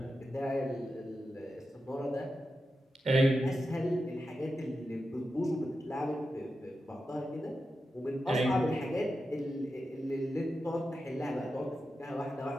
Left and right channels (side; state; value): both; normal; correlation 0.90